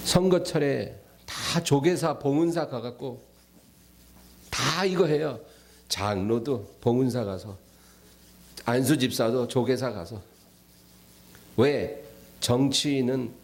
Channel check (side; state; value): both; identical; correlation 1.00